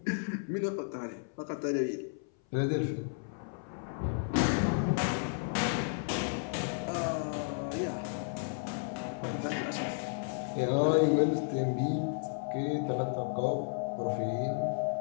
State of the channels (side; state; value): right; silent; 56 dB below the other